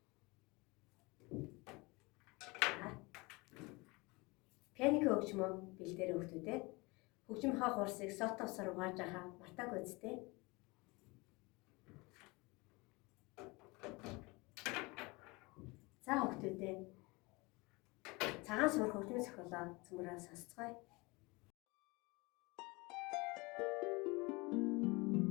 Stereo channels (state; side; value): quieter; right; 25.3 dB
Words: Пианко хөгжмөө бэлдээрэй хүүхдүүдээ. Хөгжим хаа хурсыг сотовсоор угааж байгаа мартаагүй үстэй. За хүүхдүүдээ. Цагаан суурах хөгжмийн зохиолоо цөмрөө сонсцгоё.